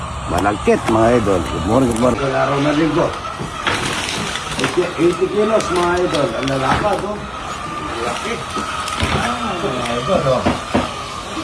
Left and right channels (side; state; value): both; identical; correlation 1.00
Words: malagkit mga idol. Good morning. Araw na linggo. 80 kilos mga idol. Ang lalakad o. Laki. Mga idol o.